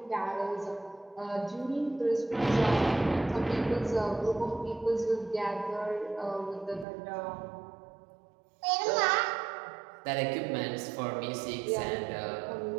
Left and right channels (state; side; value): drops out; left; at 6.9 s